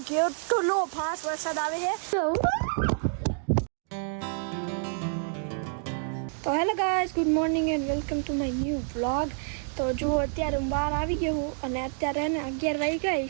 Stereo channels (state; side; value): silent; left; 59 dB below the other